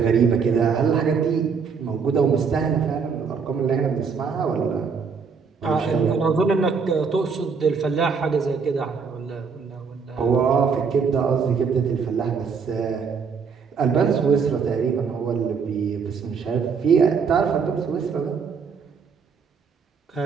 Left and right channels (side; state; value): left; quieter; 5.8 dB